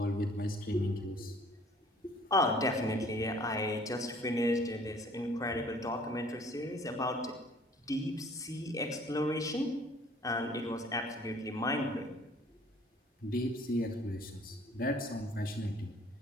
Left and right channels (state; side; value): normal; both; correlation 0.55